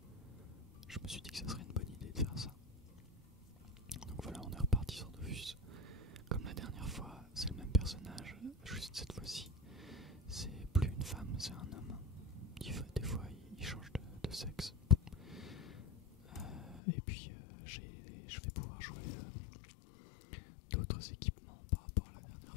je me suis dit que ça serait une bonne idée de faire ça. Donc voilà, on est reparti sur Dofus. Comme la dernière fois, c'est le même personnage, juste cette fois-ci, c'est plus une femme, c'est un homme. Des fois, il change de sexe. Et puis, je vais pouvoir jouer d'autres équipements par rapport à la dernière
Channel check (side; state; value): right; drops out; at 16.8 s